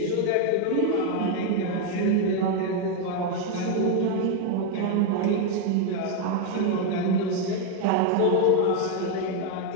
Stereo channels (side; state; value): both; different; correlation 0.01